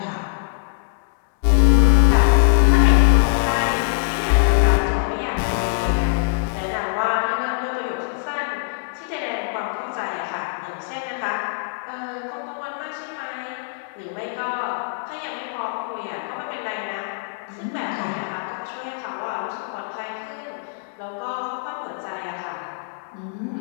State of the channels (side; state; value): right; silent; digital silence